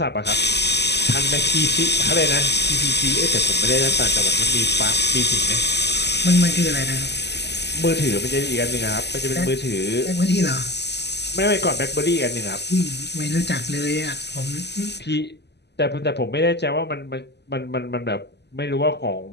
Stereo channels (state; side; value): late; right; 0.50 ms